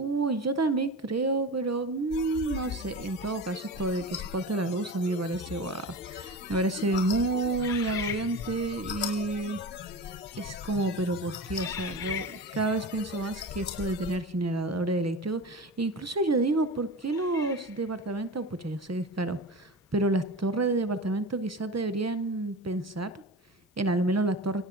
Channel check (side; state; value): both; normal; correlation 0.30